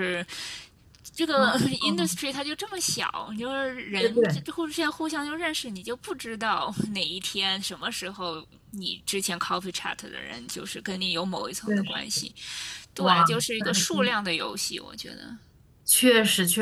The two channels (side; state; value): both; identical; correlation 1.00